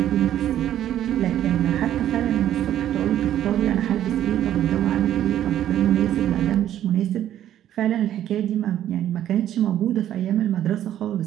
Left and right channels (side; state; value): left; quieter; 11.5 dB